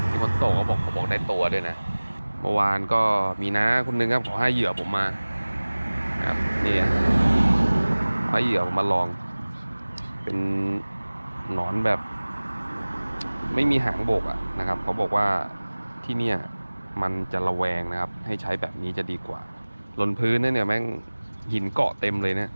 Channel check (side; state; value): both; inverted; correlation -1.00